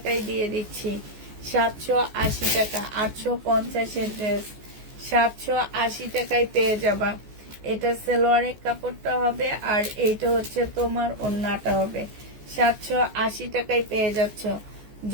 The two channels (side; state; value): left; late; 14 ms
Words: দিয়ে দিচ্ছি। 780 টাকা, 850-এর ড্রেস 780 টাকায় পেয়ে যাবা। এটা সালোয়ারের কাপড়টা হবে, আর এইটা হচ্ছে তোমার ওড়নাটা হবে। 780 টাকায় পেয়ে যাচ্ছ।